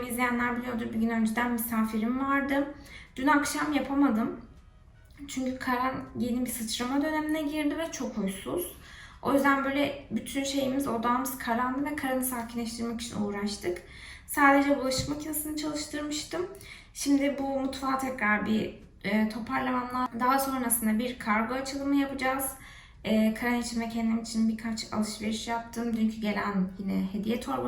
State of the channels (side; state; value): both; identical; correlation 1.00